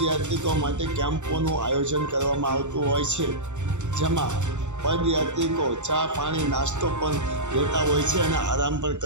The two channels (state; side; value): late; left; 0.84 ms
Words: માટે કેમ્પોનું આયોજન કરવામાં આવતું હોય છે, જેમાં પદયાત્રિકો ચા પાણી નાસ્તો પણ લેતા હોય છે અને આરામ પણ